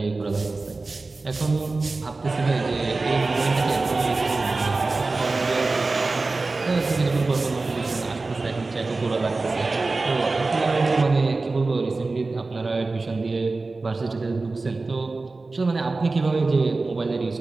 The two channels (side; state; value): left; quieter; 3.6 dB